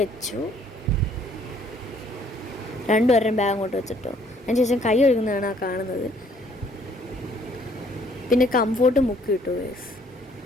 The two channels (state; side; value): normal; both; correlation 0.62